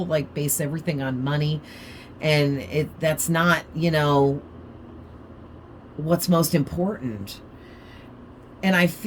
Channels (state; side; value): identical; both; correlation 1.00